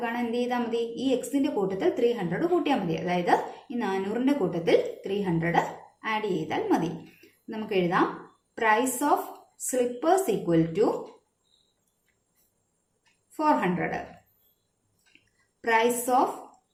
കാണാൻ എന്ത് ചെയ്താൽ മതി? ഈ എക്സിന്റെ കൂട്ടത്തിൽ 300 കൂട്ടിയാൽ മതി. അതായത് ഈ 400ന്റെ കൂട്ടത്തിൽ 300 ആഡ് ചെയ്താൽ മതി. നമുക്ക് എഴുതാം price of slippers equal to 400. Price of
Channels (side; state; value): both; identical; correlation 1.00